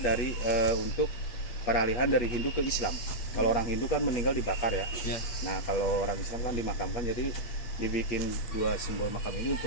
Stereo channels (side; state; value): right; late; 8.4 ms